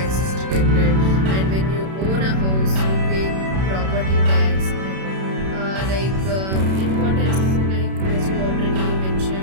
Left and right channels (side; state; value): left; late; 31 ms